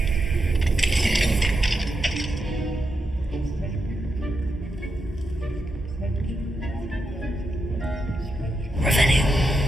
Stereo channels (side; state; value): both; normal; correlation 0.85